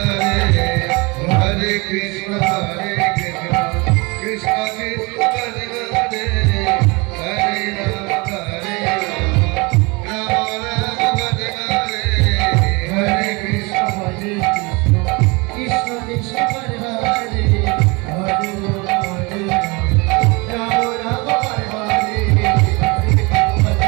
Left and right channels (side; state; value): left; quieter; 26.9 dB